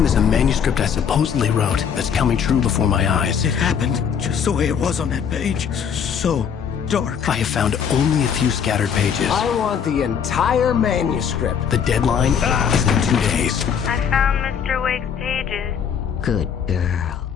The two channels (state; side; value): quieter; right; 7.5 dB